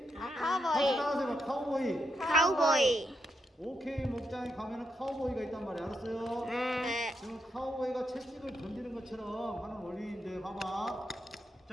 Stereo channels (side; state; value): both; normal; correlation 0.82